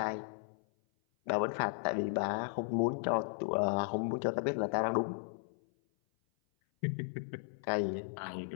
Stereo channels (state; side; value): silent; right; 54 dB below the other